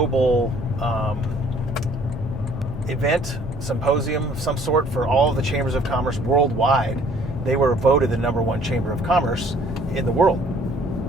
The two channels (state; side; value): normal; both; correlation 0.58